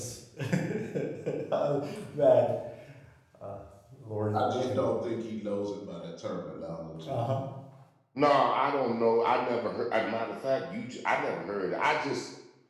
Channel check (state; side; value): identical; both; correlation 1.00